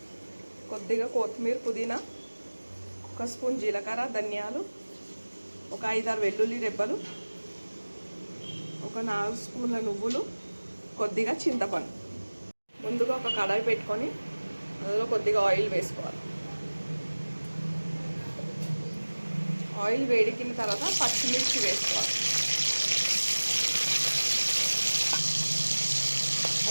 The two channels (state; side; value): inverted; both; correlation -1.00